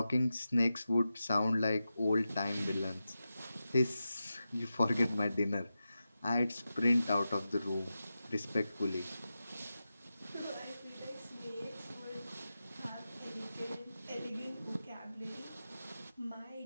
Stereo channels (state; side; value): inverted; both; correlation -0.92